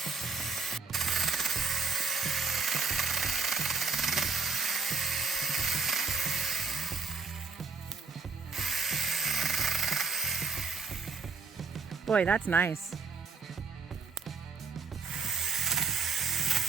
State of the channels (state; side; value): quieter; left; 4.6 dB